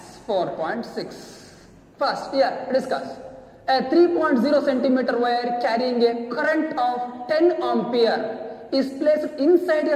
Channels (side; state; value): both; identical; correlation 1.00